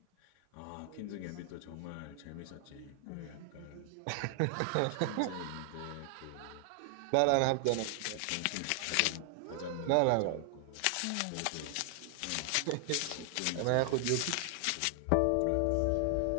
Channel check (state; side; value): different; both; correlation 0.00